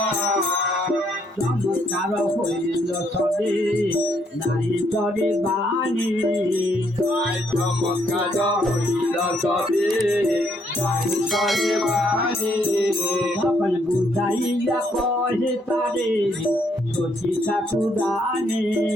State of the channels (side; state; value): both; normal; correlation 0.71